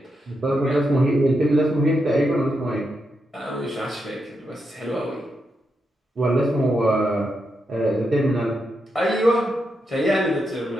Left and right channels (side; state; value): both; normal; correlation 0.84